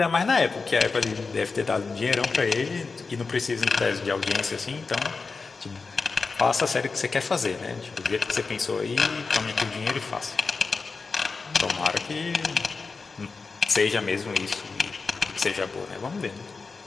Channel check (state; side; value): quieter; right; 4.4 dB